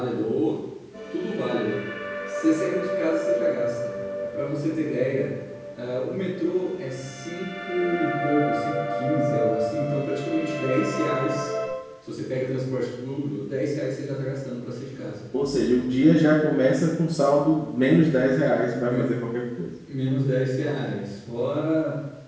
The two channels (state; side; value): identical; both; correlation 1.00